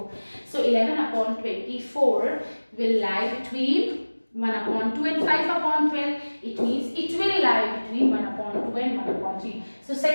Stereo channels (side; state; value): both; inverted; correlation -1.00